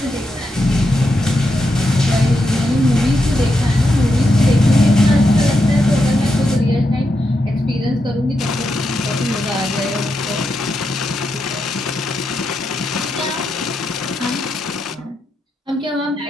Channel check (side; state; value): both; normal; correlation 0.84